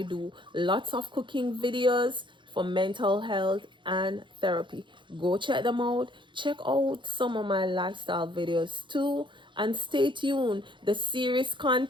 do lots of cooking videos for mental health and therapy. Go check them out. Check out some of my lifestyle videos too. And stay tuned. The series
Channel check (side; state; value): left; late; 0.23 ms